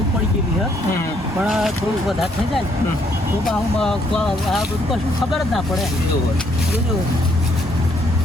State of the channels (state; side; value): normal; both; correlation 0.70